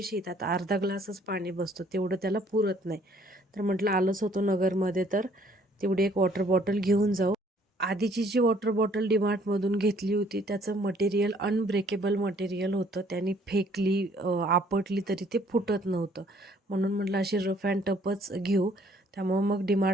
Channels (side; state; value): both; normal; correlation 0.62